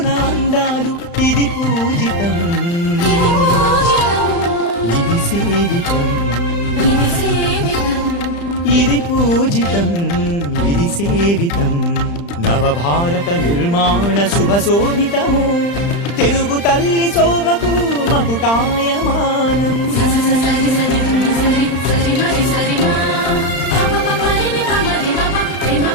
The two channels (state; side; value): late; right; 35 ms